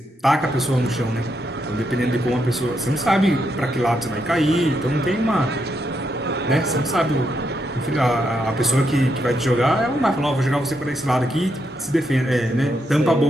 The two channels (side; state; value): both; normal; correlation 0.80